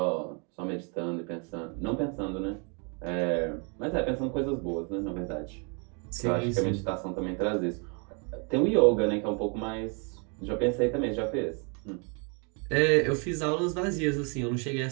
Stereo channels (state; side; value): quieter; left; 35.5 dB